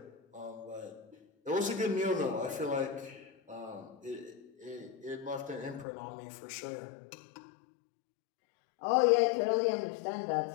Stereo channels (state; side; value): drops out; right; at 5.9 s